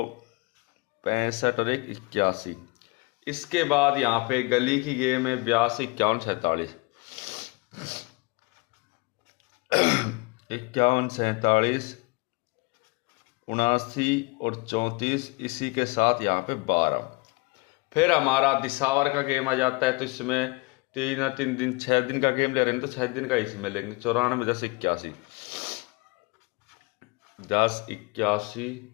65 और 1 81। इसके बाद यहाँ पे गली की गेम है 82 51 47, 51 47 79 और 34, इसी के साथ यहाँ पे 12। फिर हमारा दिसावर का गेम आ जाता है, तो इसमें 3 दिन 6 दिन का गेम ले रहे हैं, तो 6 दिन का इसमें लेंगे। 94 10 81 10 81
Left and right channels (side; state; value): right; quieter; 27.2 dB